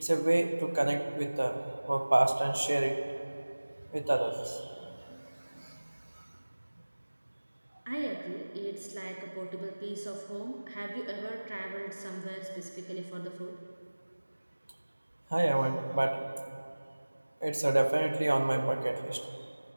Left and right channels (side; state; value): both; inverted; correlation -1.00